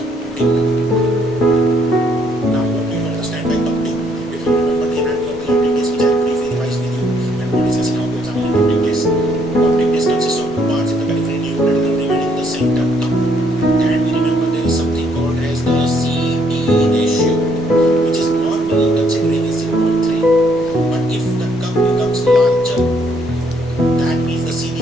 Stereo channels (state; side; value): normal; both; correlation 0.69